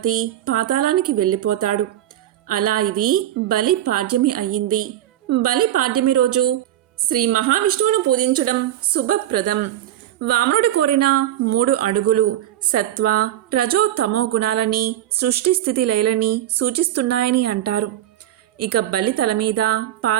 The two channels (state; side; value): quieter; left; 12.6 dB